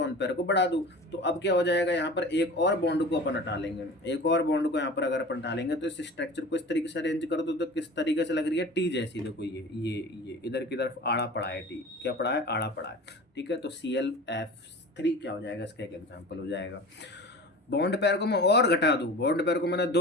पेयर को बढ़ा दूँ, तो अब क्या हो जाएगा, यहाँ पर एक और बॉन्ड को अपन हटा लेंगे। एक और बॉन्ड को यहाँ पर अगर अपन हटा लेंगे तो इस स्ट्रक्चर को इस तरीके से अरेंज कर दो तो किस तरीके से लग रही है, टी जैसी। देखो ये इधर की तरफ आड़ा पड़ा है, टी क्या पड़ा है, आड़ा पड़ा है, ठीक है। तो ClF3 क्या हो जाएगा, इसका एक एग्जाम्पल हो जाएगा। बॉन्ड पेयर को मैं और घटा दूं, बॉन्ड पेयर को मैंने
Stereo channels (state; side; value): normal; both; correlation 0.37